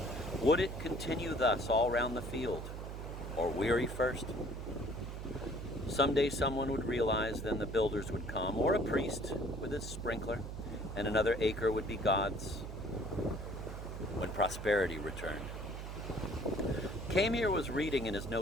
Would it continue thus all round the field, or weary first? Someday someone would realize, then the builders would come, or a priest with his sprinkler, and another acre would be God's, when prosperity returned. Camier was reading in his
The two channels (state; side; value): noise; right; hum, 7 dB below the sound